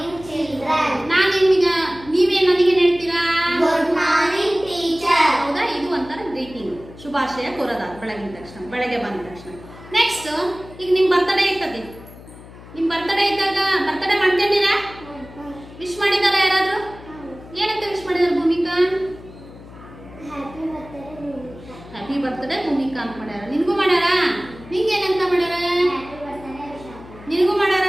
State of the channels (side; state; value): left; noise; hum, 18 dB below the sound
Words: children. ನಾನು ನಿಮಗೆ ನೀವೇನ್ ನನಗೆ ಹೇಳ್ತೀರಾ? Good morning teacher. ಹೌದಾ? ಇದು ಒಂಥರ ಗ್ರೀಟಿಂಗ್, ಶುಭಾಶಯ ಕೋರೋದ ಬೆಳಗ್ಗೆ ಬಂದ ತಕ್ಷಣ. ನೆಕ್ಸ್ಟ್, ಈಗ ನಿಮ್ ಬರ್ತ್ಡೇ ಇರ್ತದೆ. ನಿಮ್ ಬರ್ತ್ಡೇ ಇದ್ದಾಗ ಬರ್ತ್ಡೇ ಮಾಡ್ಕೊಂಡಿರಾ? ವಿಶ್ ಮಾಡಿದಾರ ಯಾರಾದ್ರೂ? ಏನಂತ ವಿಶ್ ಮಾಡಿದಾರ? ಭೂಮಿಕಾ ಹ್ಯಾಪಿ ಬರ್ತ್ಡೇ ಭೂಮಿಕಾ ಅಂತ ಮಾಡ್ಯಾರ. ನಿನ್ಗೂ ಮಾಡ್ಯಾರ? ನಿಂಗೆ ಏನಂತ ಮಾಡ್ಯಾರ? ನಿನಗೂ ಮಾಡ್ಯಾರ?